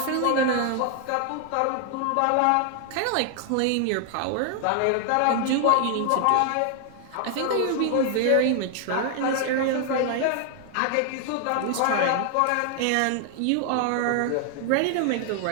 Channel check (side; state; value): both; different; correlation 0.00